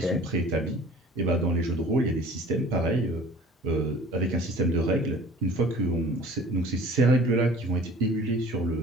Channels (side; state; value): both; normal; correlation 0.46